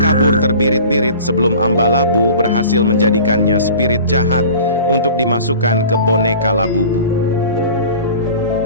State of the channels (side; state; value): both; inverted; correlation -0.41